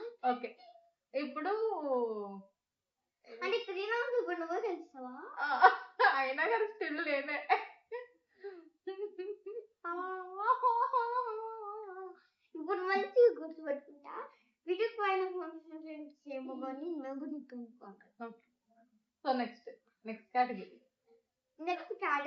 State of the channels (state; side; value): identical; both; correlation 1.00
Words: ఓకే, ఇప్పుడు అంటే 3 rounds ఇప్పుడు నువ్వు తెలుస్తావా? అయినా కానీ స్టిల్ లేనే. ఇప్పుడు మంచిగా గుర్తుపెట్టుకుంటా. వీడియో పైన ఏమో కానీ మేము గుర్తుపెట్టుకుంటాం. So next category. Next